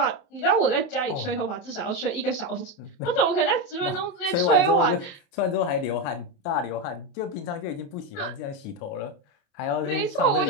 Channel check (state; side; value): late; right; 28 ms